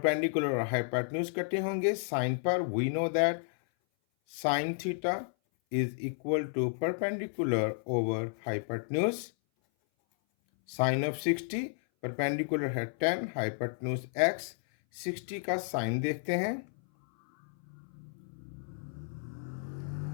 और हाइपोटेन्यूज कटे होंगे साइन पर। We know that sine theta is equal to perpendicular over hypotenuse. Sine of 60, perpendicular है 10, हाइपोटेन्यूज x। 60 का साइन देखते हैं।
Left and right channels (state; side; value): silent; right; 56 dB below the other